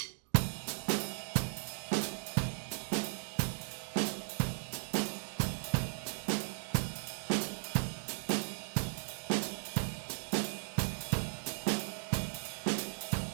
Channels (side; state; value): left; silent; digital silence